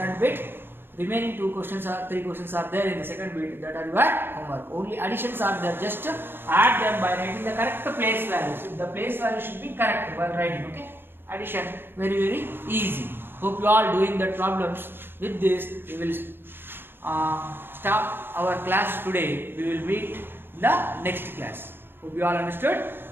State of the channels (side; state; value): left; late; 0.10 ms